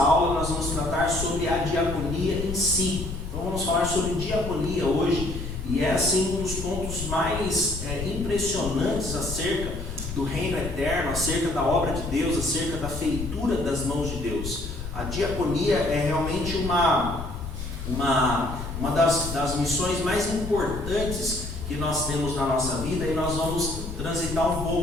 nós vamos tratar sobre a diaconia em si. Então vamos falar sobre diaconia hoje, e é assim um dos pontos mais impressionantes acerca do reino eterno, acerca da obra de Deus, acerca da feitura das mãos de Deus. A diaconia é realmente uma das missões mais importantes que nós temos na nossa vida, e nós vamos transitar um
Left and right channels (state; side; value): noise; left; rumble, 7 dB below the sound